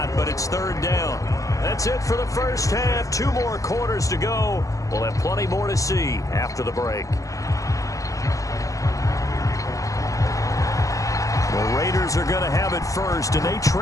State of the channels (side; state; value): right; late; 0.16 ms